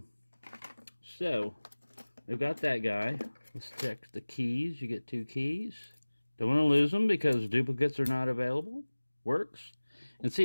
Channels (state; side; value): inverted; both; correlation -1.00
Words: So, we've got that guy. Let's check the keys. You get 2 keys. Don't want to lose them because duplicates are not available. Works. And see,